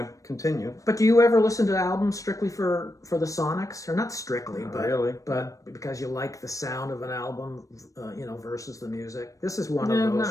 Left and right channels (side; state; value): right; late; 0.16 ms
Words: continue. But do you ever listen to albums strictly for the sonics, or not strictly, but because you like the sound of an album, versus the music? This is one of those.